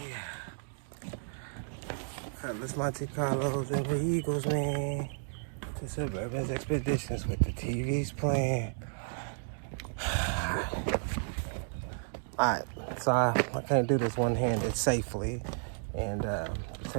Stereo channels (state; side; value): silent; left; digital silence